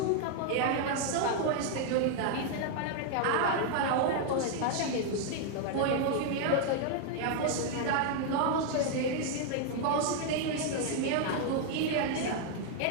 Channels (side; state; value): both; different; correlation 0.00